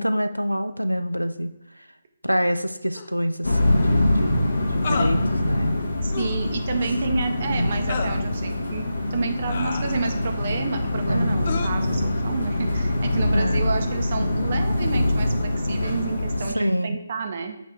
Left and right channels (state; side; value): inverted; both; correlation -0.90